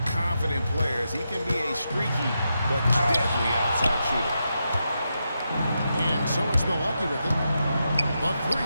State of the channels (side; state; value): both; inverted; correlation -0.86